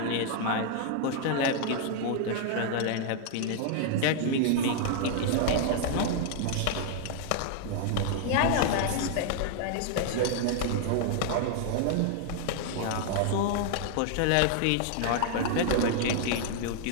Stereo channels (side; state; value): both; different; correlation 0.00